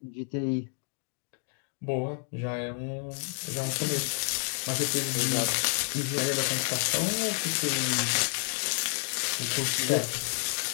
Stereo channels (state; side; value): silent; right; 58 dB below the other